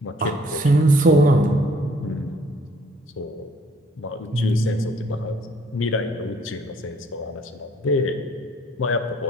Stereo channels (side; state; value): both; normal; correlation 0.61